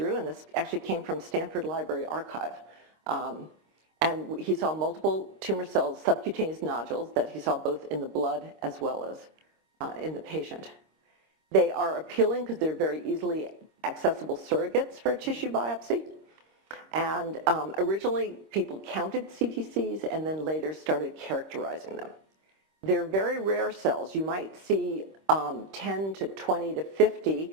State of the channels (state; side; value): late; left; 26 ms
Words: and this actually came from Stanford Library Archive. And he saw multiple tumor cells, subcutaneous nodules, that he saw both in the blood as well as in the patient. They are appealing because they're very easily accessible surrogates for a tissue biopsy. And originally, people counted CTCs and then later started characterizing them. they're very rare cells. You might see 10 to 20 to 50